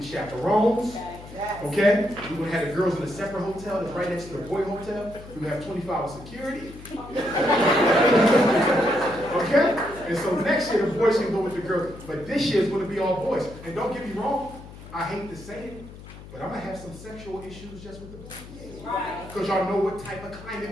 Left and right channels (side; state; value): left; noise; hum, 16 dB below the sound